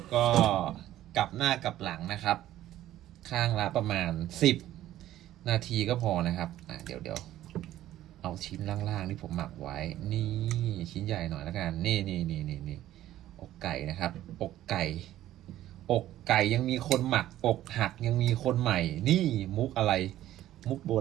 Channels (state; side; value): quieter; left; 13.5 dB